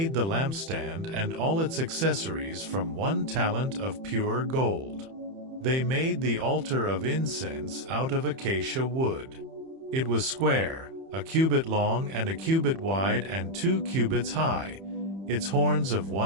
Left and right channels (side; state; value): left; late; 31 ms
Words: the lampstand and all its accessories from 1 talent of pure gold. They made the altar of incense out of acacia wood. It was square, 1 cubit long and 1 cubit wide and 2 cubits high, its horns of